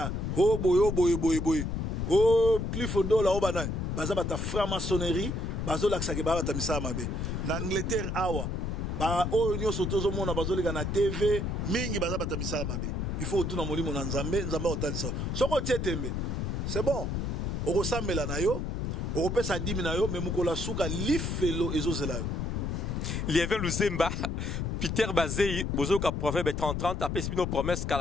oh boy. Oh Clifford Dola obana baza bata franc-maçonnerie, bazo laksake bata misa mabe. Na Angleterre awa ba o nyon surtout zo mona bazo lega na TV mingi baza bata misa mabe. Il faut tout na molimo na nzambe otalisa. Soko tietembe. C'est bon. Orosambela na yo, oropesa dimi na yo, mais mukola suka lifelo ezozela yo. Lievin Luzemba, Peter Bazei, bozoka proverbe 30-30, apesi bino promesse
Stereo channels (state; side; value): noise; left; rumble, 2 dB below the sound